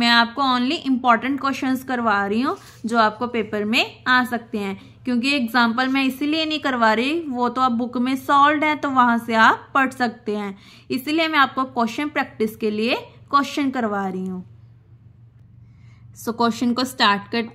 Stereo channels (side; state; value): both; identical; correlation 1.00